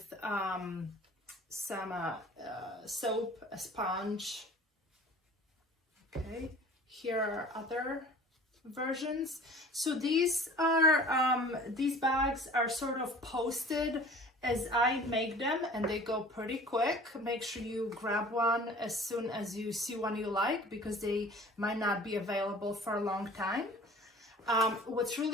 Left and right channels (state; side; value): normal; both; correlation 0.45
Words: some soap, a sponge. Okay, here are other versions. So these bags are sort of posted as I make them, and they go pretty quick. Make sure you grab one as soon as you see one you like, because they might not be available for a long time. What's